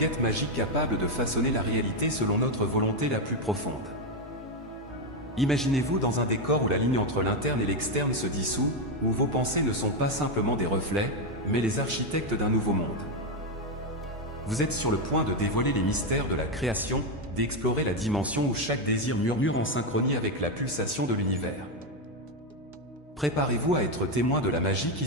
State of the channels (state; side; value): normal; both; correlation 0.06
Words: magique capable de façonner la réalité selon notre volonté la plus profonde. Imaginez-vous dans un décor où la ligne entre l'interne et l'externe se dissout, où vos pensées ne sont pas simplement des reflets, mais les architectes d'un nouveau monde. Vous êtes sur le point de dévoiler les mystères de la création, d'explorer la dimension où chaque désir murmure en synchronie avec la pulsation de l'univers. Préparez-vous à être témoin de la magie qui